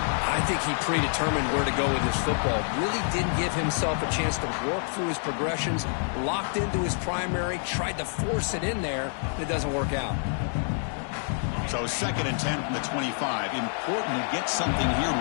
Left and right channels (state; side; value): silent; right; 56 dB below the other